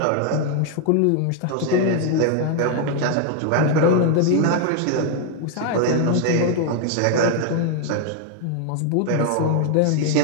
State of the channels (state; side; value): different; both; correlation 0.00